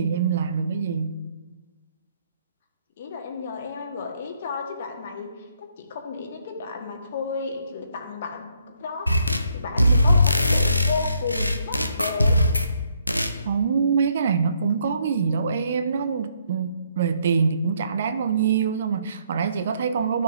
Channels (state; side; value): inverted; both; correlation -0.70